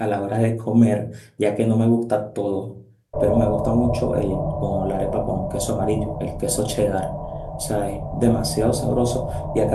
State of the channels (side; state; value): both; identical; correlation 1.00